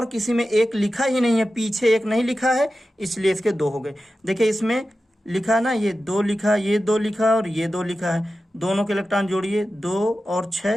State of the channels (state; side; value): normal; both; correlation 0.93